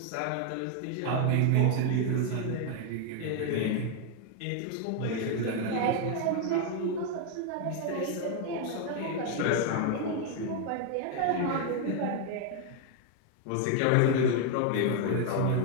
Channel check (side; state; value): both; different; correlation 0.00